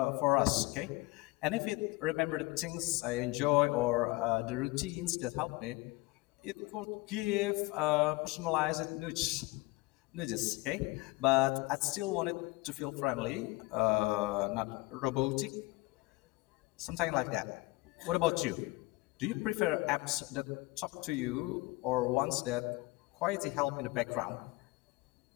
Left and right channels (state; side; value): quieter; right; 22.4 dB